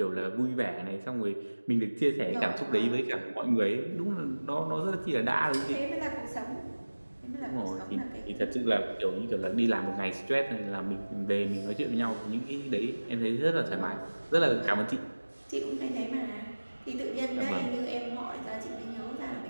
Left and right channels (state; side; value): inverted; both; correlation -1.00